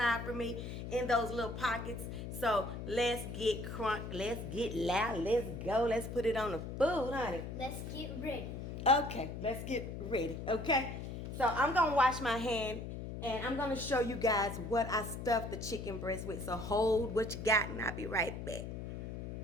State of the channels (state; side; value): noise; left; hum, 7 dB below the sound